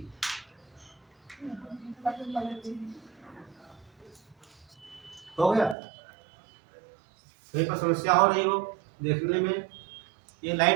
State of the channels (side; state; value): left; drops out; at 5.8 s